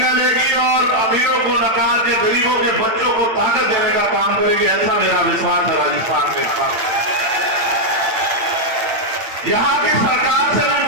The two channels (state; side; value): late; left; 8.7 ms